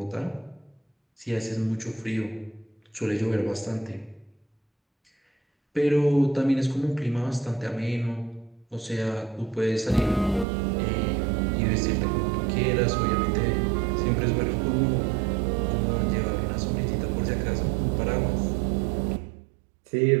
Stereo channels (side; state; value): left; drops out; at 10.5 s